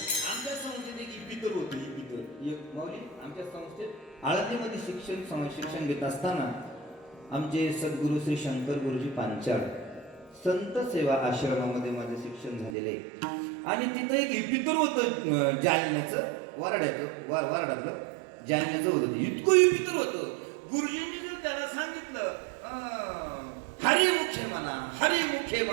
आमच्या संस्थेत एक इपितर होते. एक माऊली आमच्या संस्थेत आळंदीमध्ये शिक्षण घेत असताना आमचे सद्गुरू श्री शंकर गुरुजी पांचाळ संत सेवा आश्रमामध्ये माझे शिक्षण झालेले आहे. आणि तिथं एक इपितर होतं, जालन्याचं वारडातलं जालन्याचं होतं. इतकं इपितर होतं. गुरुजींनी जर त्याला सांगितलं हरिमुखे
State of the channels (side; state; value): left; drops out; at 12.8 s